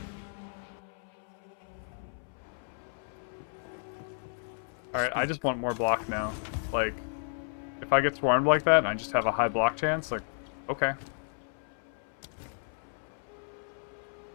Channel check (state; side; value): silent; right; 56 dB below the other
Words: Alright, I just want more block now. Like, if I get swarmed like that and I just have a high block chance, like, okay.